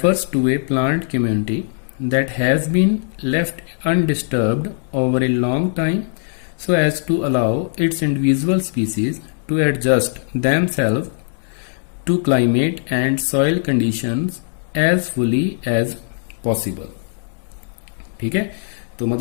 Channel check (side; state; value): right; silent; digital silence